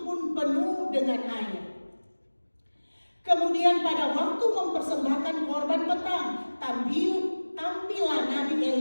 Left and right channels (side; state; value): both; inverted; correlation -1.00